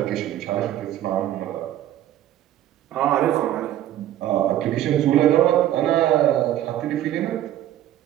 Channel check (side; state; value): left; quieter; 12.6 dB